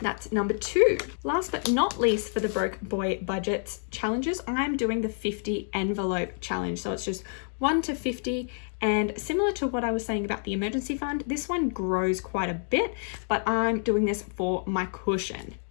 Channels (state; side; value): silent; right; 59 dB below the other